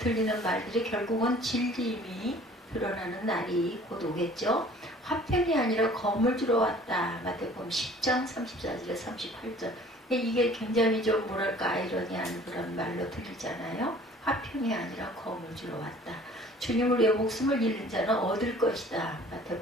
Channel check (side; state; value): both; normal; correlation 0.51